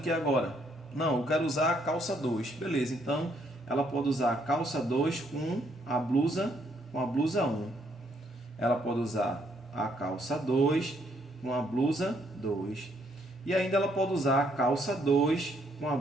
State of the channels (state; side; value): normal; both; correlation 0.71